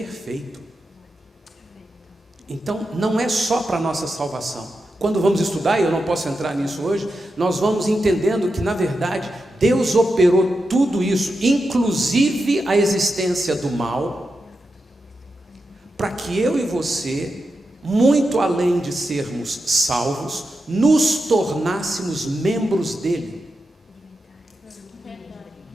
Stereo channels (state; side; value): normal; both; correlation 0.89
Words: Então, não é só para a nossa salvação. Quando vamos estudar, e eu não posso entrar nisso hoje, nós vamos entendendo que, na verdade, Deus operou tudo isso, inclusive a existência do mal, para que eu e você, muito além de sermos salvos, nos tornássemos membros dele.